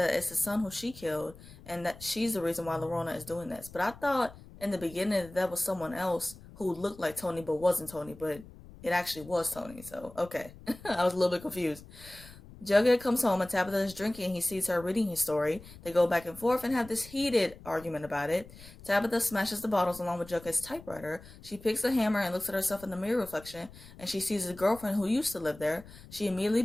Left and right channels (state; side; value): noise; left; rumble, 19 dB below the sound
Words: it's the son who she killed, and that she's the reason why Lorona is doing this. But I thought in the beginning that was someone else who looked like Toni but wasn't Toni, but it actually was Toni, so okay. I was a little bit confused. Jughead comes home and Tabitha is drinking. He sees her reading his story. They go back and forth and have this heated argument about it. Tabitha smashes the bottles along with Jughead's typewriter. She picks a hammer and looks at herself in the mirror reflection, and she sees a girlfriend who used to live there. She immediately